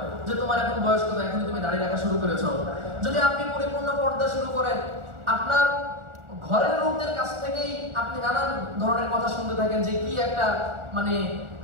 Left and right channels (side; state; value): left; late; 1.4 ms